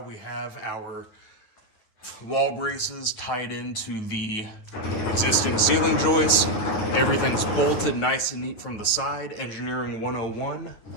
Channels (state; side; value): late; right; 9.4 ms